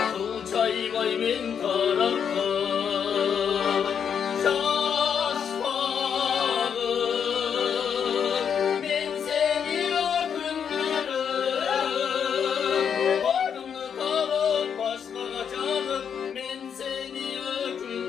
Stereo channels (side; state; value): right; quieter; 7.6 dB